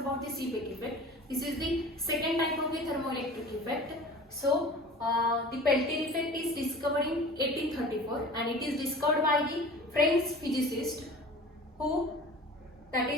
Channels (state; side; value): normal; both; correlation 0.40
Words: the Seebeck effect. This is the second type of the thermoelectric effect. So the Peltier effect is discovered in 1834 and it is discovered by the French physicist who, that